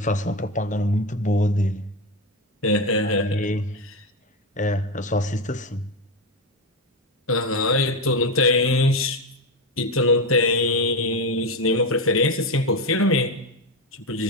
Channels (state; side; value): normal; both; correlation 0.13